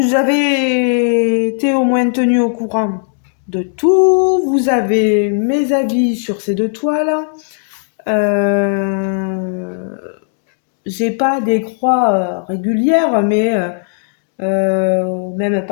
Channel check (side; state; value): right; silent; digital silence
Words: avez été au moins tenu au courant de tout. Vous avez mes avis sur ces deux toiles. Euh, j'ai pas des croix régulières, mais même